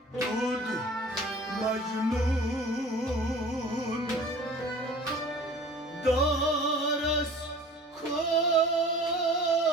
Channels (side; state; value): both; normal; correlation 0.45